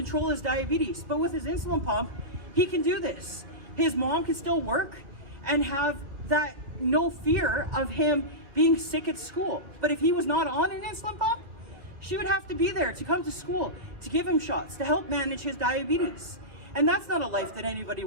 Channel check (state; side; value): late; left; 2.5 ms